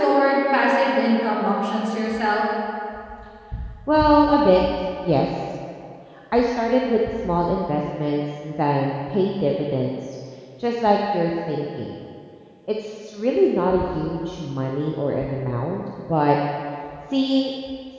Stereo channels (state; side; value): identical; both; correlation 1.00